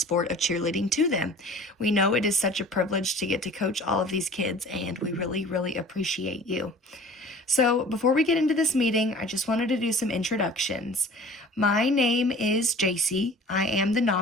of cheerleading to them. We know it is such a privilege to get to coach all of these kids and we really appreciate you. So before we get into this meeting, I just wanted to do some introductions. My name is JC. I am the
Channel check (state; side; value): normal; both; correlation 0.45